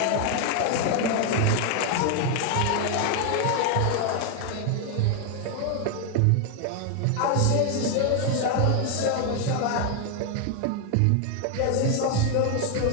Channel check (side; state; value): both; different; correlation 0.00